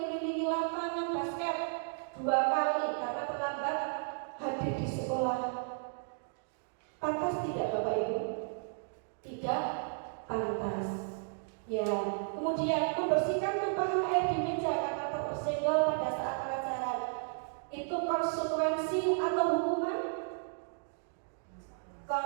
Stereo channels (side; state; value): left; silent; digital silence